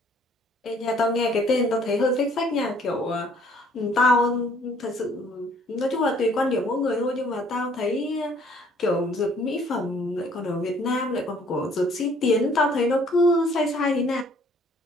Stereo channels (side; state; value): both; normal; correlation 0.59